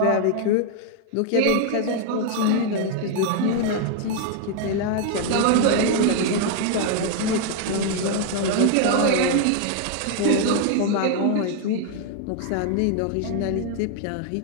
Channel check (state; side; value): different; both; correlation 0.00